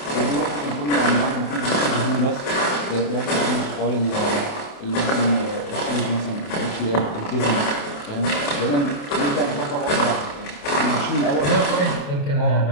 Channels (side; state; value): right; late; 28 ms